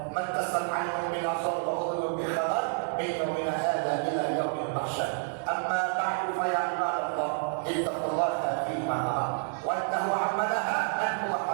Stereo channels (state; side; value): silent; left; digital silence